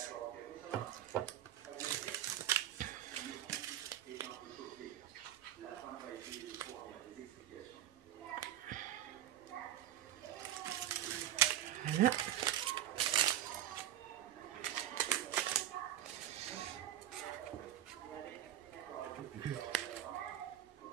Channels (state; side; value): quieter; left; 11.9 dB